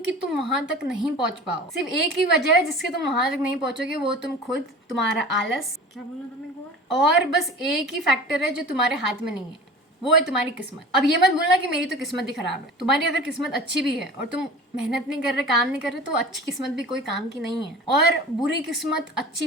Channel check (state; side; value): normal; both; correlation 0.39